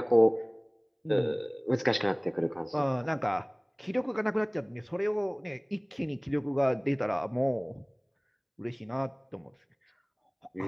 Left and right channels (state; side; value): identical; both; correlation 1.00